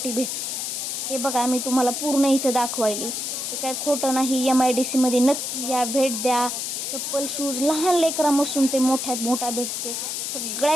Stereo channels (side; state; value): left; noise; hiss, 3 dB below the sound